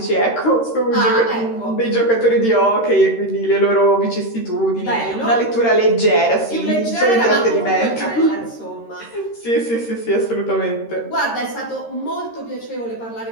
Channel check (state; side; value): late; right; 13 ms